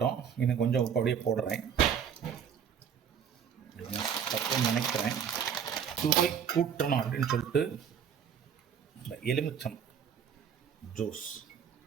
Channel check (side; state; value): left; quieter; 7.9 dB